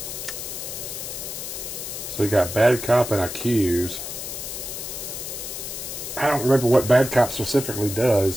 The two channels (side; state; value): left; noise; hiss, 7 dB below the sound